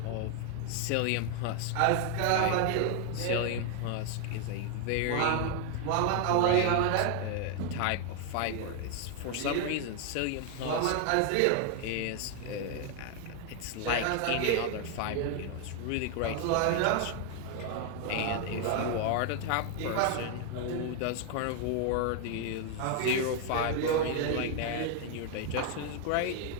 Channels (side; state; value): both; different; correlation 0.00